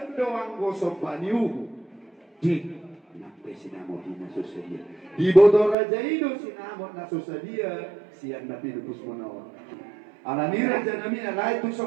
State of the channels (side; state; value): left; drops out; at 5.8 s